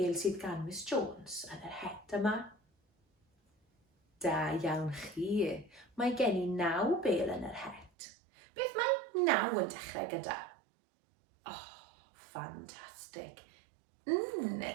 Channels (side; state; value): left; drops out; at 7.9 s